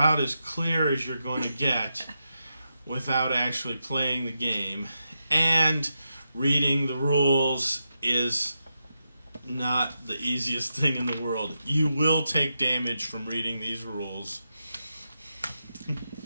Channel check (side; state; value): both; inverted; correlation -0.86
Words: as clear as you're going to get without actually playing the game. And reading the rules is not the easiest thing in the world. You will take damage from reading these rules.